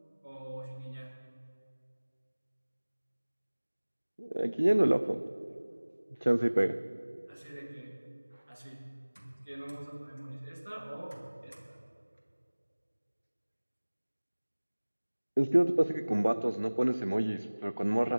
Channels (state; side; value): inverted; both; correlation -1.00